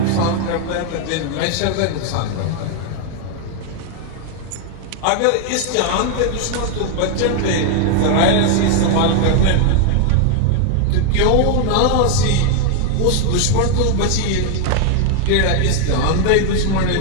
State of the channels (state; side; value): different; both; correlation 0.00